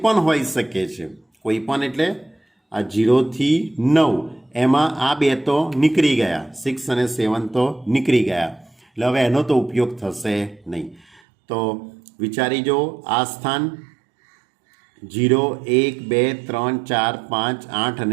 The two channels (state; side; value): drops out; left; at 11.2 s